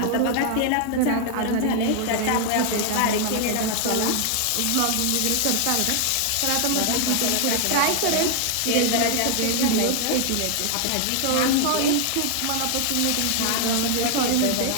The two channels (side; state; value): both; different; correlation 0.00